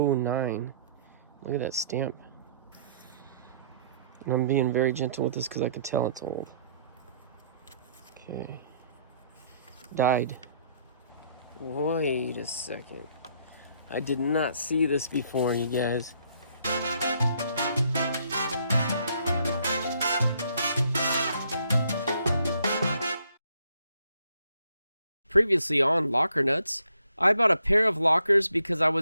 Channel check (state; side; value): inverted; both; correlation -0.67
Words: Look at that stamp. And I'm being very gentle with this because I can tell it's old. Okay. Died. Wait a second. I did not see this before, you guys. Previously on Locker Nuts, I bought a pair of lockers because I